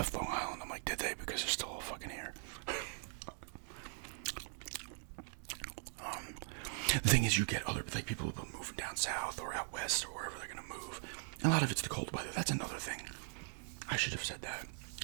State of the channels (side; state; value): left; silent; 51 dB below the other